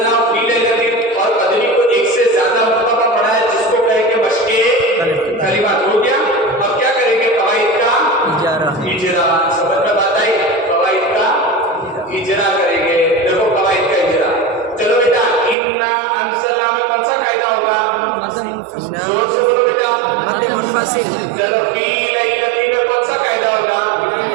फीले और कदरी को एक से ज्यादा मर्तबा पढ़ा है जिसको कहे के मश्के कलिमात हो गया। अब क्या करेंगे? कवाइद का इजरा, समझ में बात आई? इजरा करेंगे, देखो कवाइद का इजरा। चलो बेटा इन्ना अंसलना में कौन सा कायदा होगा? जोर से बोलो बेटा। चलो फी लैलती में कौन सा कायदा होगा?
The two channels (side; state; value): left; drops out; at 15.6 s